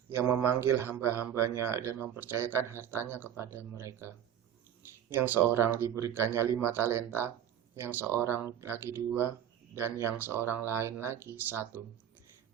yang memanggil hamba-hambanya dan mempercayakan hartanya kepada mereka. Yang seorang diberikannya 5 talenta, yang seorang lagi 2, dan yang seorang lain lagi 1,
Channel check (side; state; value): left; quieter; 10.0 dB